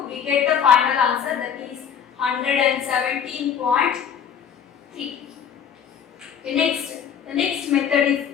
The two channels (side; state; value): right; quieter; 7.9 dB